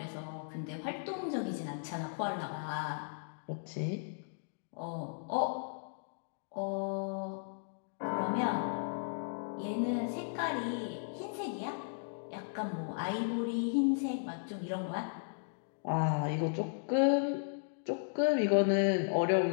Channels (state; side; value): silent; right; digital silence